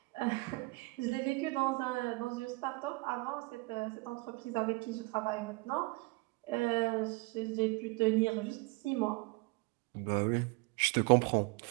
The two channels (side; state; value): left; quieter; 25.2 dB